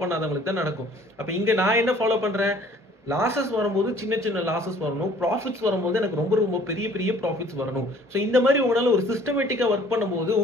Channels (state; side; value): normal; both; correlation 0.54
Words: பண்ணாதவங்களுக்கு தான் நடக்கும். அப்ப இங்க நான் என்ன ஃபாலோ பண்றேன், லாசஸ் வரும்போது சின்ன லாசஸ் வரணும், ப்ராஃபிட்ஸ் வரும்போது எனக்கு ரொம்ப பெரிய ப்ராஃபிட்ஸ் வரணும். ஸோ இந்த மாதிரி உங்களால ஒரு சிஸ்டமேட்டிக்கா ஒர்க் பண்ணும்போது